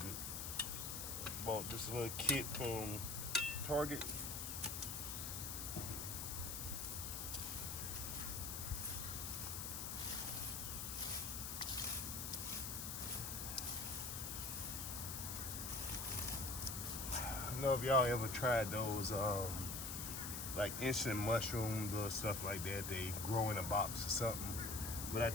Bought this little kit from Target. I don't know if y'all ever tried those like instant mushrooms or stuff like that. They grow in a box or something. But I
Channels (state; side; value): noise; left; hiss, 4 dB below the sound